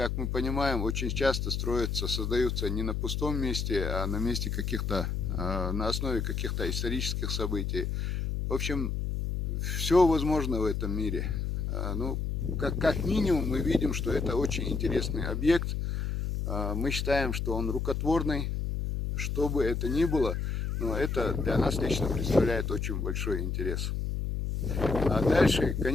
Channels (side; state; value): left; noise; hum, 1 dB below the sound